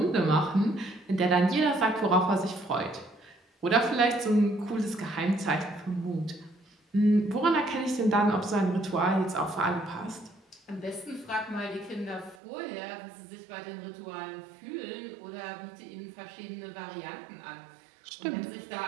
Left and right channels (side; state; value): left; drops out; at 12.4 s